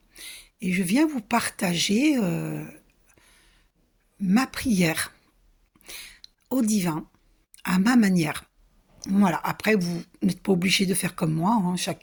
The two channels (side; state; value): both; identical; correlation 1.00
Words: et je viens vous partager ma prière au divin à ma manière. Voilà, après, vous n'êtes pas obligé de faire comme moi, hein,